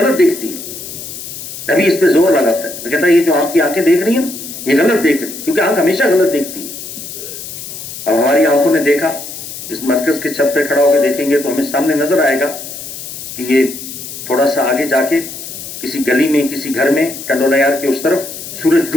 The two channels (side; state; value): left; noise; hiss, 10 dB below the sound